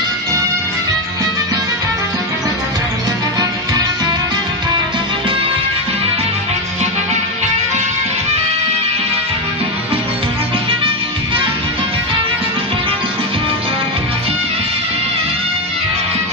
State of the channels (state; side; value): normal; both; correlation 0.10